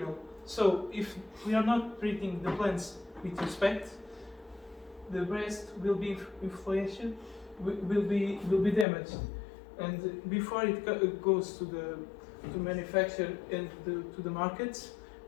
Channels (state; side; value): drops out; right; at 8.8 s